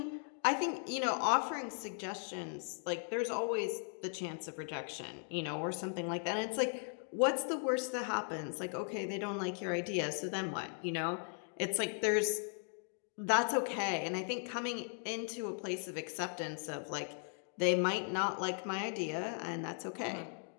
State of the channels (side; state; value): right; silent; 53 dB below the other